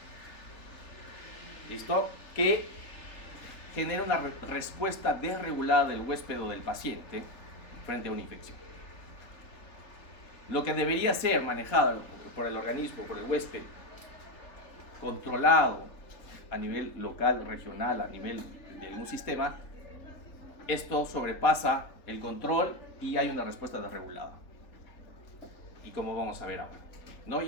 ¿Listo? Que genera una respuesta desregulada del huésped o del paciente frente a una infección. Lo que debería ser manejado por el organismo, por el huésped, controlado a nivel local, regional, a nivel de un sistema, esto sobrepasa el control y hay una respuesta desregulada. Y como vamos a ver ahora, ¿no?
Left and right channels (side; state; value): right; late; 4.1 ms